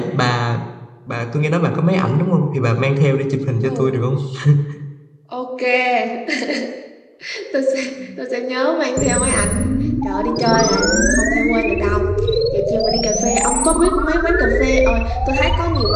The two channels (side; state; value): both; identical; correlation 1.00